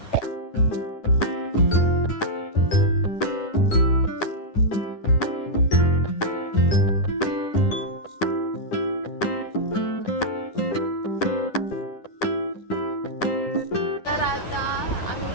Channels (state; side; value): late; right; 9.9 ms